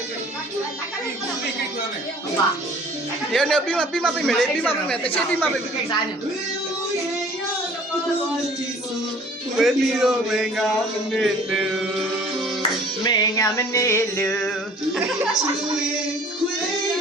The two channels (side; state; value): both; normal; correlation 0.52